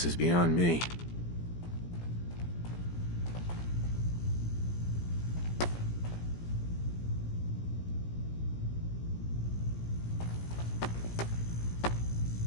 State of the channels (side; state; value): right; late; 17 ms